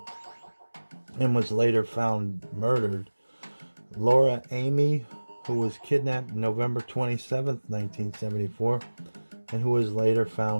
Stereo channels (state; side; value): inverted; both; correlation -1.00